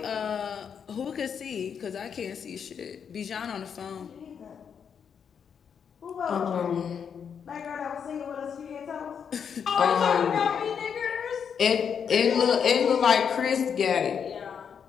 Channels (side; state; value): right; quieter; 7.2 dB